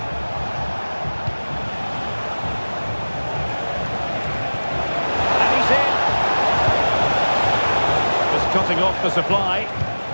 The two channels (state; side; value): inverted; both; correlation -1.00